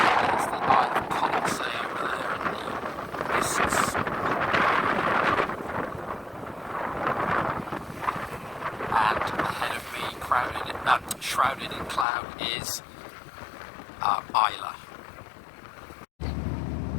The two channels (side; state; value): right; drops out; at 12.1 s